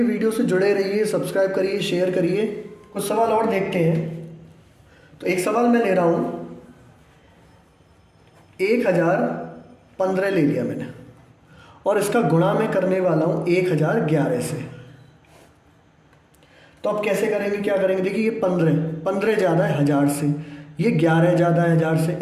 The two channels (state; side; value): identical; both; correlation 1.00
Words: वीडियो से जुड़े रहिए, सब्सक्राइब करिए, शेयर करिए। कुछ सवाल और देखते हैं। तो एक सवाल मैं ले रहा हूँ, 1015 ले लिया मैंने और इसका गुणा मैं करने वाला हूँ 1011 से। तो अब कैसे करेंगे, क्या करेंगे, देखिए ये 15 ज़्यादा है 1000 से, ये 11 ज़्यादा है 1000 से,